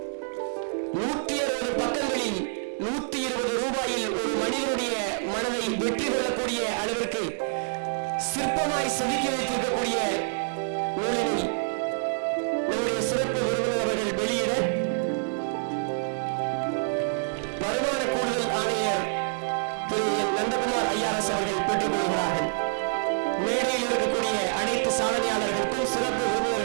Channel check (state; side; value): silent; left; digital silence